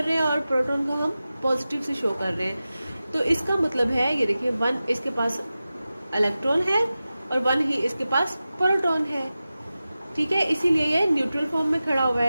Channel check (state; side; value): inverted; both; correlation -0.95